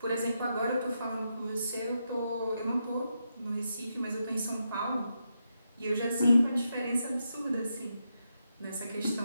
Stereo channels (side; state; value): both; inverted; correlation -0.84